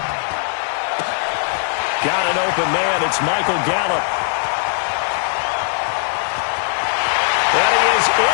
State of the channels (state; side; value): silent; right; digital silence